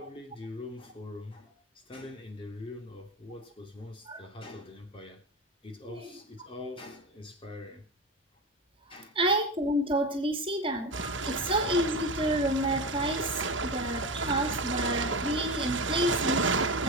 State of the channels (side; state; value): both; normal; correlation 0.22